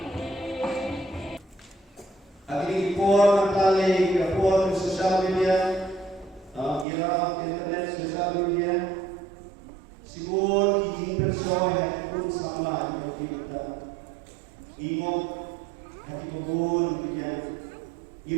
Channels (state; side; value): drops out; left; at 6.9 s